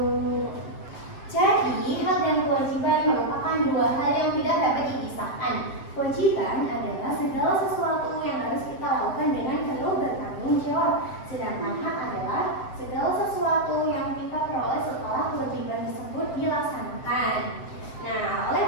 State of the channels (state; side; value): late; right; 7.7 ms